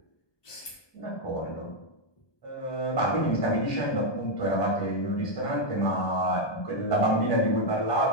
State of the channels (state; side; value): late; right; 1.2 ms